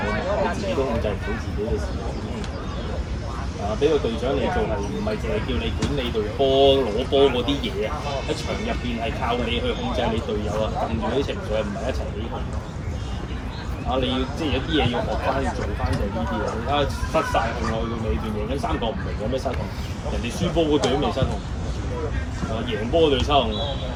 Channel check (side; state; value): both; identical; correlation 1.00